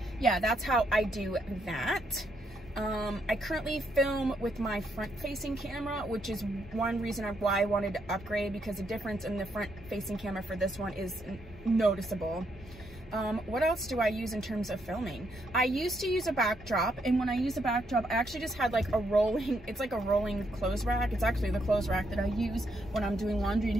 yeah, that's how I do that. I currently film with my front-facing camera, which is one reason why I wanted to upgrade, because the difference in the front-facing camera for this one is noticeable. What else do I use in terms of filming? I used to use a backdrop, and when I use a backdrop, I actually just had like a rolling, it's like a rolling clothes rack. It's actually the clothes rack that I use when I'm doing laundry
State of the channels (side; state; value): both; normal; correlation 0.76